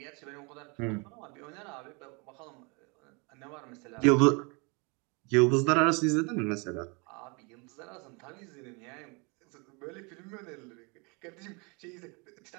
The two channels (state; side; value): quieter; left; 31.0 dB